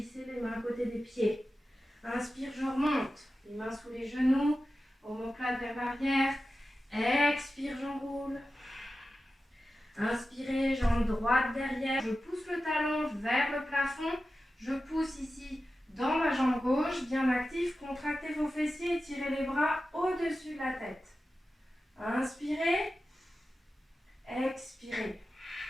les mains à côté des pieds. Inspire, je remonte. Les mains sous les genoux. Omoplate vers l'arrière. Expire, j'enroule. Inspirez, jambe droite derrière, je pousse le talon vers le plafond, je pousse ici dans ma jambe gauche, bien actif, contractez vos fessiers et tirez les bras au-dessus de la tête. Inspirez, expirez.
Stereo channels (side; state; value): both; normal; correlation 0.93